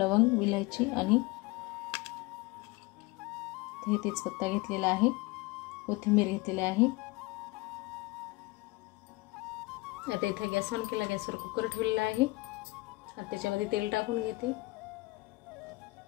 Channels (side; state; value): right; quieter; 22.6 dB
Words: विलायची आणि तेजपत्ता घेतलेला आहे, कोथिंबीर घेतलेली आहे। आता इथे गॅस ऑन केला, गॅसवर कुकर ठेवलेला आहे। आता त्याच्यामध्ये तेल टाकून घेते।